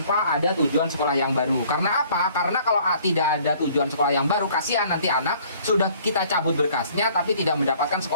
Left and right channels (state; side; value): inverted; both; correlation -0.57